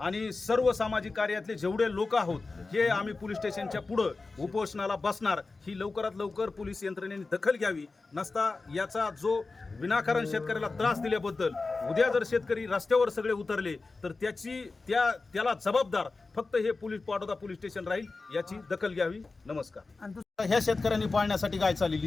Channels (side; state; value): right; quieter; 3.8 dB